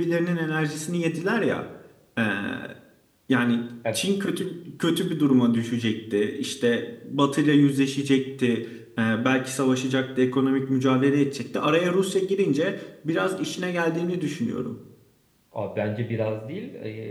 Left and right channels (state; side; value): identical; both; correlation 1.00